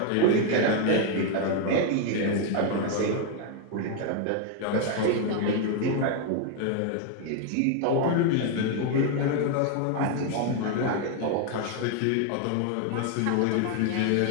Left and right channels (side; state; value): both; different; correlation 0.01